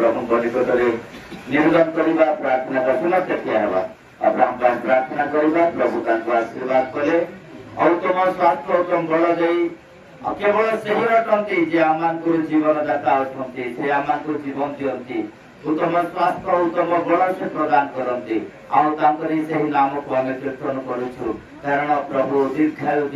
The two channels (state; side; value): identical; both; correlation 1.00